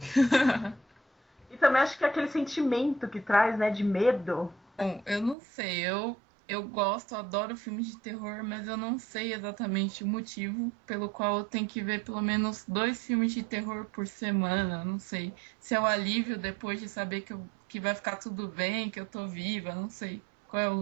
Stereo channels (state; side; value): drops out; left; at 5.4 s